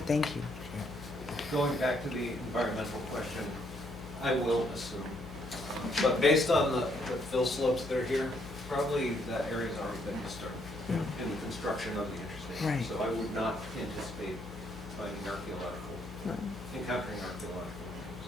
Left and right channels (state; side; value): noise; left; hum, 14 dB below the sound